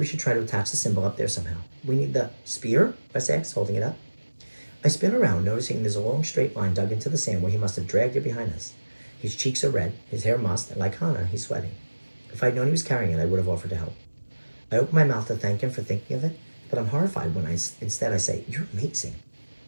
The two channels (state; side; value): inverted; both; correlation -1.00